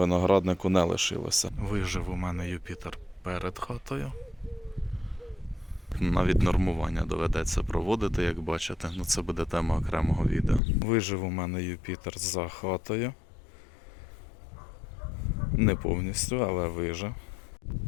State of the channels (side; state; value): right; drops out; at 10.6 s